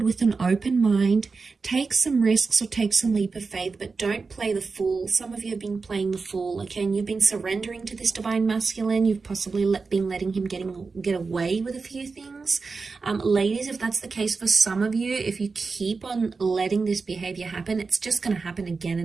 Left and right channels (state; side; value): quieter; left; 4.4 dB